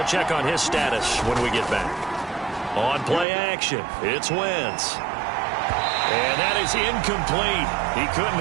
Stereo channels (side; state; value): left; drops out; at 3.2 s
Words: check on his status when we get back. On play action, it's Wentz. And that is incomplete. He